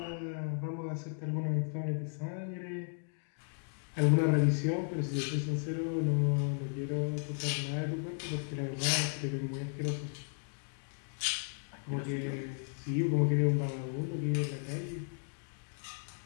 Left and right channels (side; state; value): right; silent; 55 dB below the other